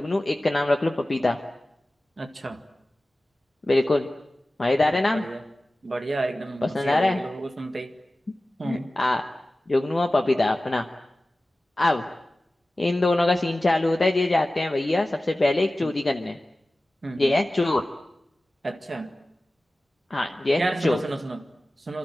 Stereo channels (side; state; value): both; normal; correlation 0.96